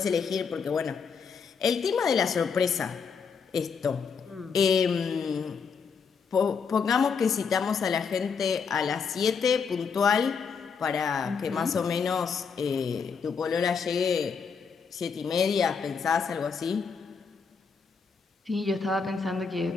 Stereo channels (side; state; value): right; quieter; 5.8 dB